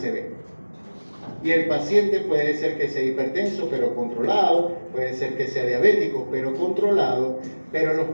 Y el paciente puede ser que sea hipertenso, pero controlado, puede ser que sea diabético, pero controlado, pero los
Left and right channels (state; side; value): inverted; both; correlation -1.00